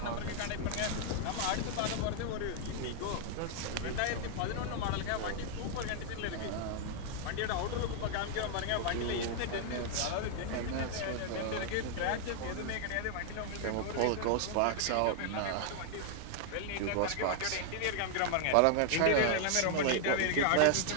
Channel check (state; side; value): different; both; correlation 0.00